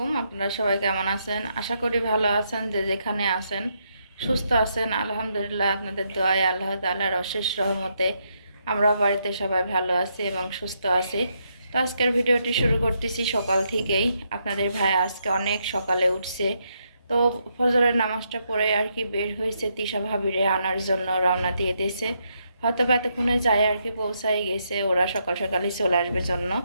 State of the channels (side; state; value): both; inverted; correlation -0.78